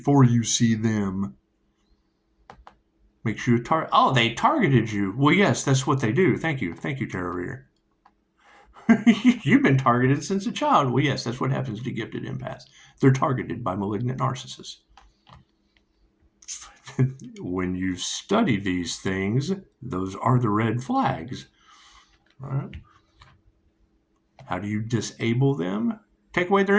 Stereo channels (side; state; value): both; identical; correlation 1.00